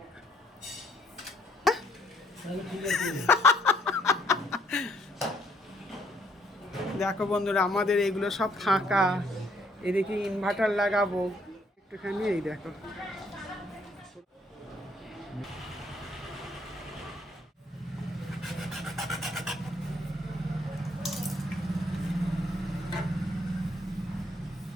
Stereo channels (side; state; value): both; normal; correlation 0.67